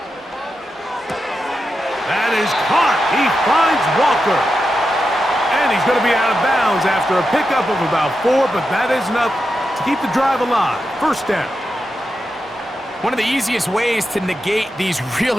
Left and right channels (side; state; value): both; normal; correlation 0.88